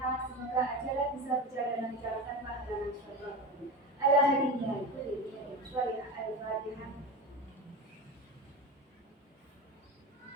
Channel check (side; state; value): both; normal; correlation 0.26